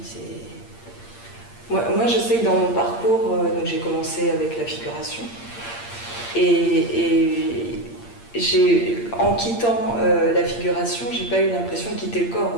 Moi, je sais que dans mon parcours, j'ai commencé avec la figuration. Et en quittant la figuration, j'ai pas eu l'impression de quitter le corps.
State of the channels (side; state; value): right; late; 8.7 ms